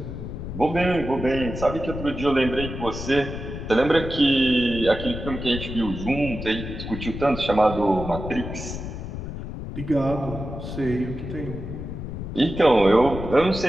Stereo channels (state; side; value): noise; left; rumble, 8 dB below the sound